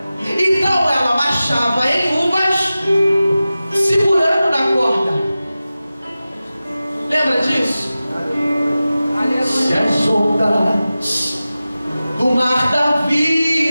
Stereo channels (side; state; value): both; inverted; correlation -0.95